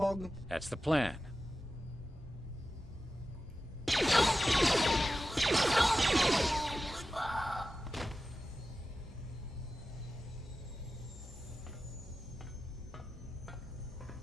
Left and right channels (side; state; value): both; normal; correlation 0.93